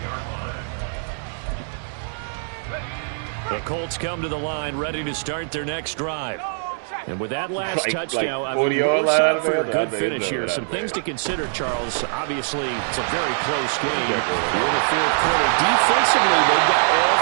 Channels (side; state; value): left; silent; 64 dB below the other